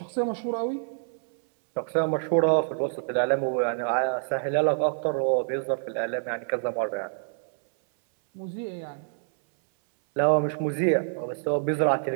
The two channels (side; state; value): left; silent; 60 dB below the other